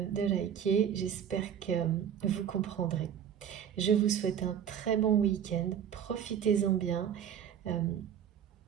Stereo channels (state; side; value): quieter; left; 8.8 dB